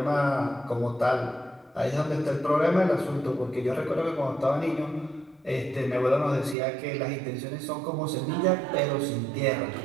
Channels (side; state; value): left; drops out; at 6.6 s